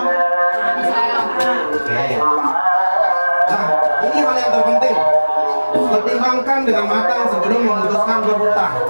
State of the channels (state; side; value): inverted; both; correlation -1.00